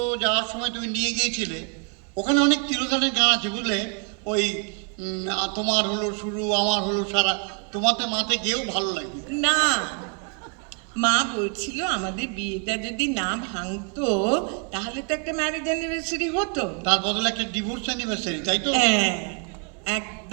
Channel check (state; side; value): quieter; left; 37.1 dB